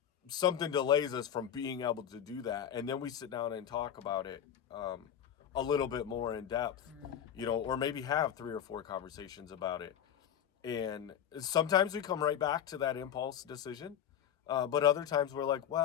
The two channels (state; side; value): quieter; right; 9.5 dB